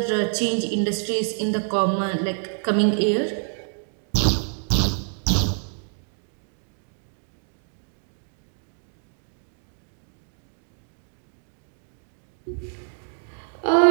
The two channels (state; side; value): silent; left; 57 dB below the other